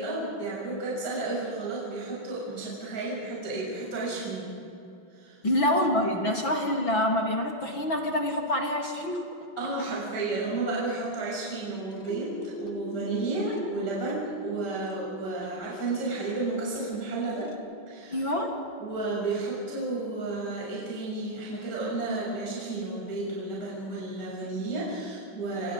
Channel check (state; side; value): late; right; 6.0 ms